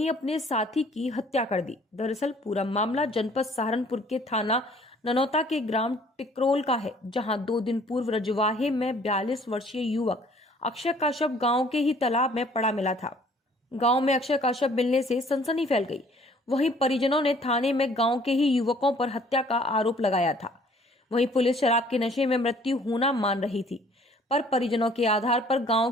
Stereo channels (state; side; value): normal; both; correlation 0.57